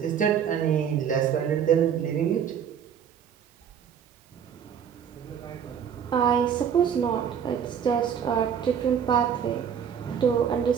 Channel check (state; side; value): quieter; left; 8.1 dB